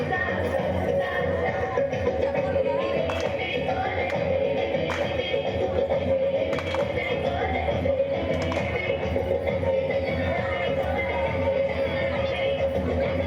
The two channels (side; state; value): both; identical; correlation 1.00